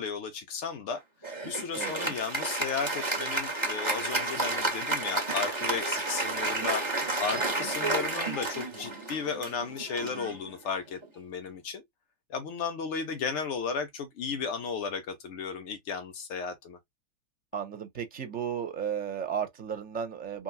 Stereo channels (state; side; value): late; right; 3.4 ms